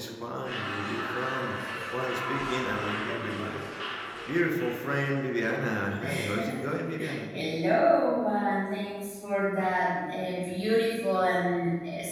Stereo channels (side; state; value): both; identical; correlation 1.00